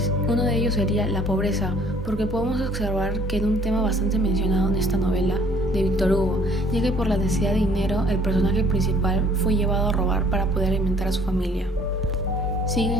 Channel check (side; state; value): both; normal; correlation 0.57